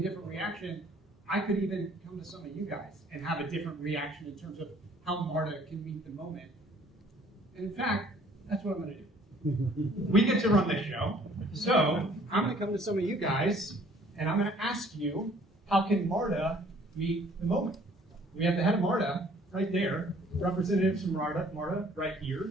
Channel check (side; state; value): both; normal; correlation 0.57